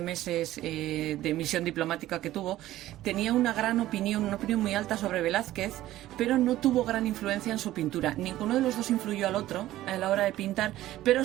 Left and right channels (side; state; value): left; quieter; 14.8 dB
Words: meses de misión diplomática que tuvo, tenía una opinión muy alta sobre Velázquez, pero no tuvo gran influencia en su pintura. Ninguno de los dos influyó al otro a la hora de pintar, pero